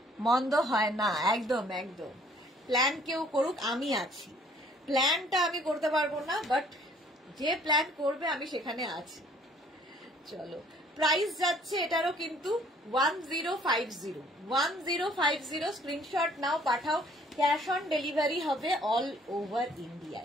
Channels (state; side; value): normal; both; correlation 0.58